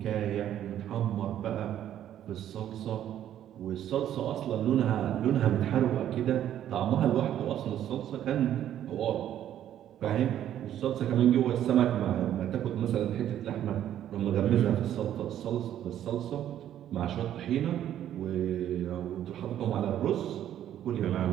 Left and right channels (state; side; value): quieter; left; 11.1 dB